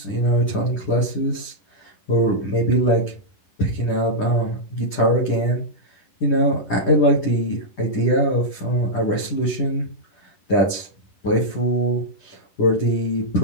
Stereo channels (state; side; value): late; right; 11 ms